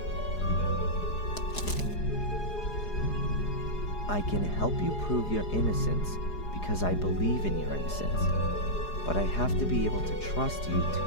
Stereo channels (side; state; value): right; late; 4.8 ms